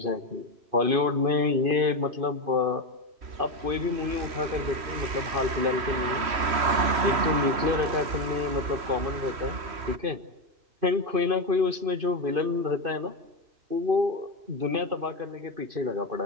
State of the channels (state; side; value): late; left; 3.1 ms